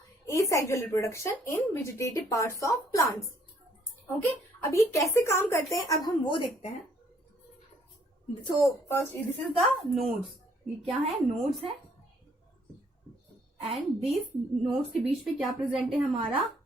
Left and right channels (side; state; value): both; normal; correlation 0.65